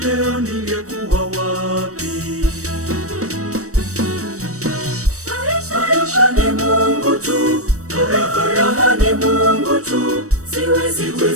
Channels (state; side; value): late; left; 0.65 ms